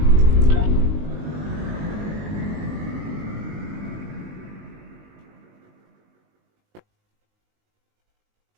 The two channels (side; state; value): left; late; 19 ms